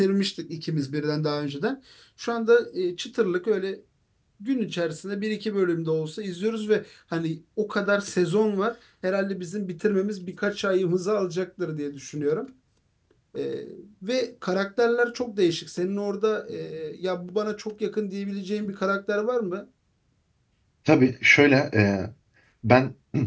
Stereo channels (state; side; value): identical; both; correlation 1.00